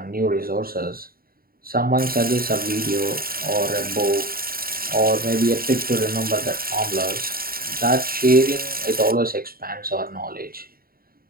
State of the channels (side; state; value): left; late; 0.43 ms